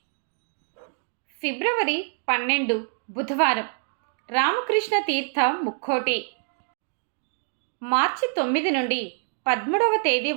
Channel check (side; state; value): left; silent; 60 dB below the other